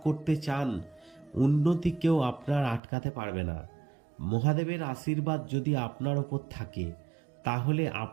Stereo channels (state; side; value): drops out; left; at 2.8 s